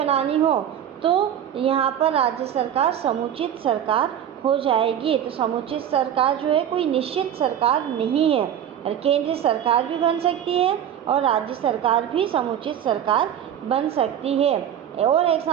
हो तो यहाँ पर राज्य सरकार समुचित सरकार हो जाएगी। तो समुचित सरकार जो है कोई निश्चित सरकार नहीं है, और केंद्रीय सरकार भी बन सकती है और राज्य सरकार भी समुचित सरकार बन सकती है। और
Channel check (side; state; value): left; quieter; 9.8 dB